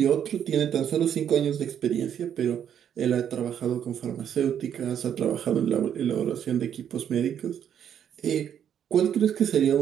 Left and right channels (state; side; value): quieter; left; 9.2 dB